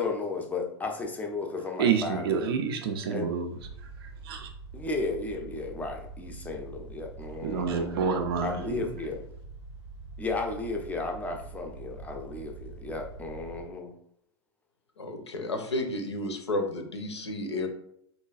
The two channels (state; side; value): normal; both; correlation 0.05